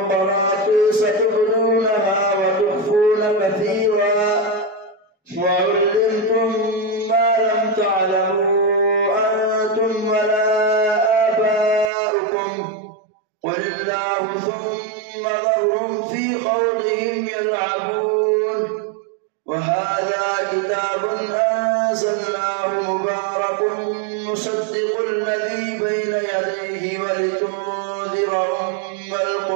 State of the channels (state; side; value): drops out; left; at 11.9 s